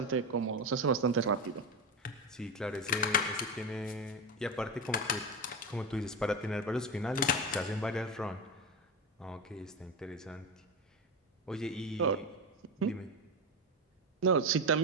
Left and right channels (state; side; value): normal; both; correlation 0.18